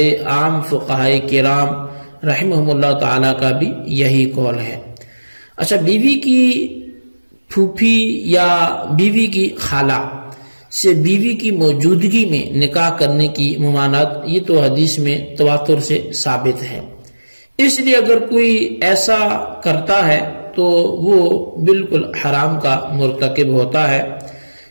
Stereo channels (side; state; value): both; inverted; correlation -1.00